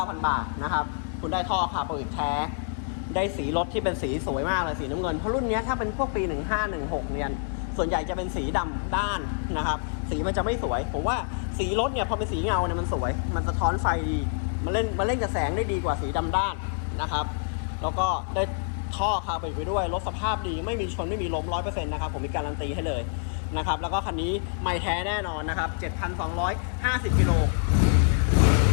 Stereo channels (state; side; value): silent; right; 59 dB below the other